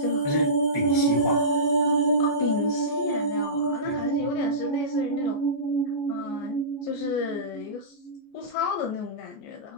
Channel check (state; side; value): late; right; 14 ms